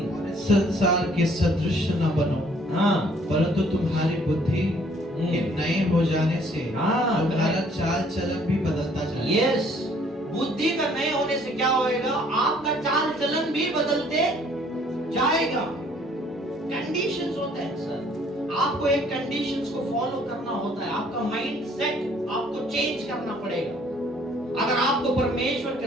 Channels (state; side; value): normal; both; correlation 0.60